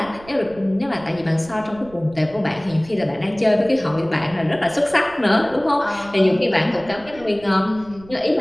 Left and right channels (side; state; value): right; noise; rumble, 21 dB below the sound